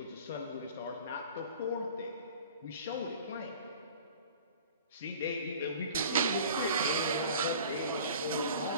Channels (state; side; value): inverted; both; correlation -0.45